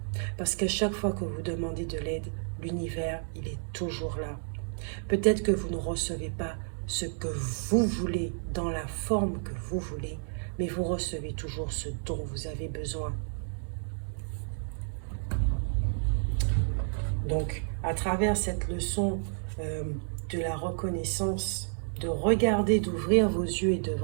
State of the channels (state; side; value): silent; left; 57 dB below the other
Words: Parce qu'à chaque fois que vous demandez de l'aide, l'univers, il est toujours là. Peut-être que vous ne recevez pas ce que vous voulez, dans la forme que vous voulez, mais vous recevez toujours ce dont vous avez besoin. Donc, à travers cette leçon de la reconnaissance, de regarder, d'ouvrir vos yeux et de